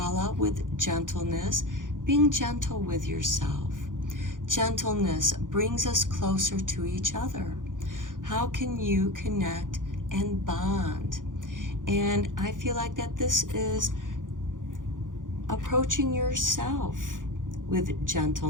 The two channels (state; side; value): late; left; 0.88 ms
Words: with gentleness, being gentle with yourself. Gentleness brings us closer to each other. How can you connect and bond? And I feel like that this is approaching yourself with